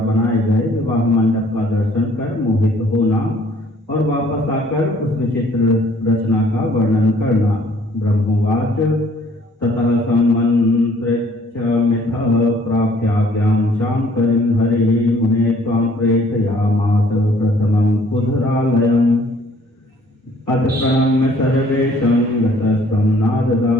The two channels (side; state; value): both; normal; correlation 0.58